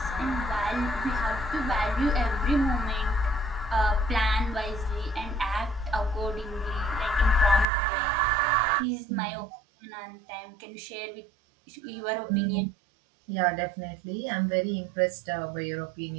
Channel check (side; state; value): left; drops out; at 7.7 s